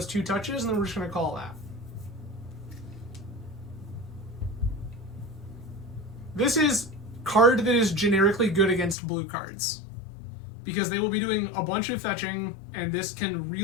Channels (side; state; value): right; drops out; at 9.0 s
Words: 2 touches, and then we're just going to call that. This is card that is generically good against blue cards, because they will be doing a bunch of fetching, and this can